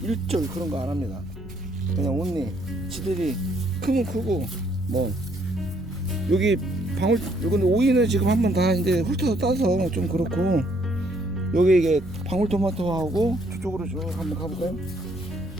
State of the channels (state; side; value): noise; right; rumble, 19 dB below the sound